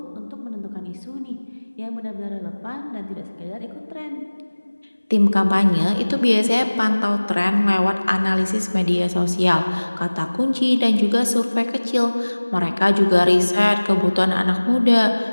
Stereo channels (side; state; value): both; inverted; correlation -1.00